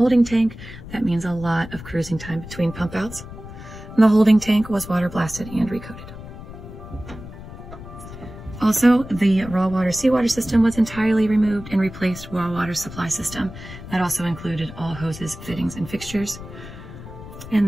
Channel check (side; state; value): left; noise; rumble, 13 dB below the sound